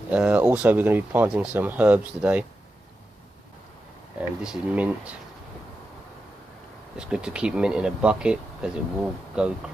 Also we're going to be planting some herbs today. And this is mint. It's good to keep mint in a bucket because it will go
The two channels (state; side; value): normal; both; correlation 0.90